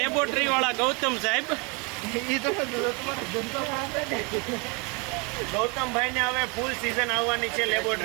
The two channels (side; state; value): left; quieter; 31.2 dB